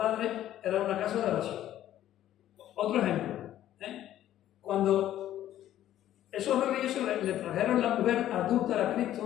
era una casa de oración. Otro ejemplo, cuando esos religiosos le trajeron la mujer adúltera a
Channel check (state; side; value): quieter; right; 12.5 dB